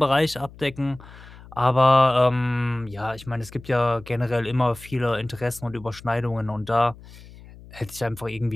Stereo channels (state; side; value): noise; left; hum, 19 dB below the sound